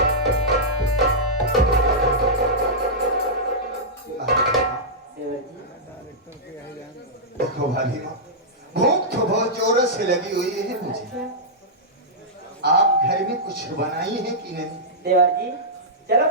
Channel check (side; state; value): both; normal; correlation -0.11